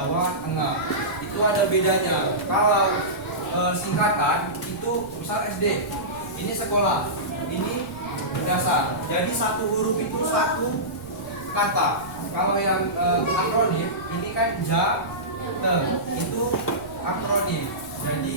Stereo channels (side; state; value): right; noise; rumble, 19 dB below the sound